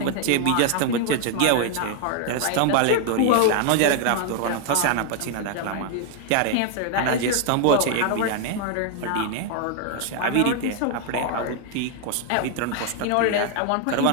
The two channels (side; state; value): both; different; correlation 0.00